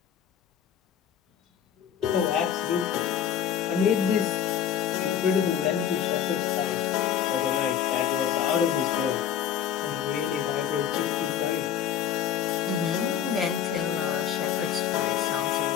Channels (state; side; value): quieter; right; 9.2 dB